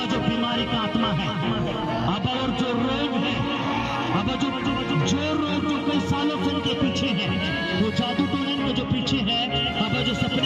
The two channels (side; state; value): both; identical; correlation 1.00